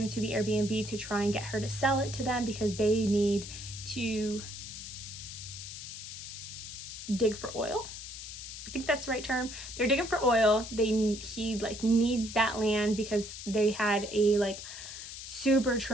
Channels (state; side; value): noise; left; hiss, 10 dB below the sound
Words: to the Airbnb to try and get her to sell it to them, because they need to dig for oil. I think that's the right term. They're digging for oil. He like needs that land because they had a like super